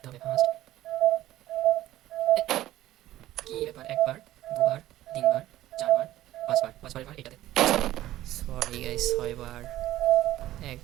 হবে, ফার্স্ট। কি ব্যাপার, একবার, দুবার, তিনবার, চারবার, পাঁচবার এবার এটাতে। সরি গাইস, 6বার।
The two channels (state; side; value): quieter; left; 14.5 dB